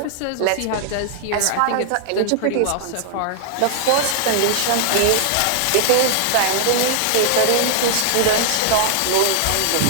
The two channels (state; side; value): different; both; correlation -0.01